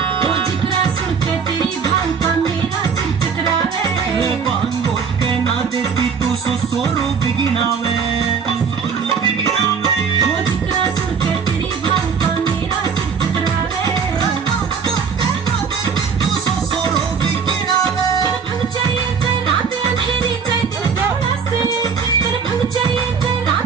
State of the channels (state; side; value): quieter; left; 6.2 dB